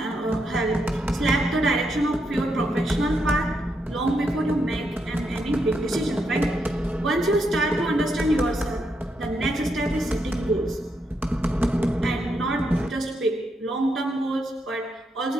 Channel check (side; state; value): both; normal; correlation 0.80